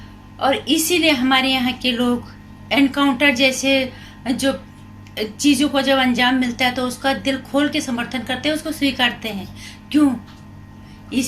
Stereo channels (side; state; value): both; identical; correlation 1.00